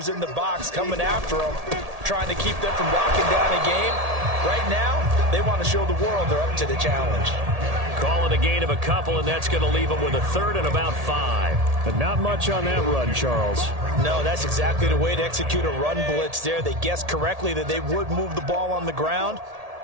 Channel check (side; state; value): left; late; 1.8 ms